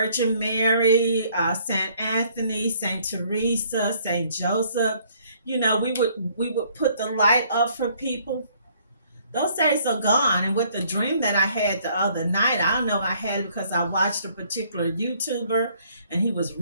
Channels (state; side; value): inverted; both; correlation -0.63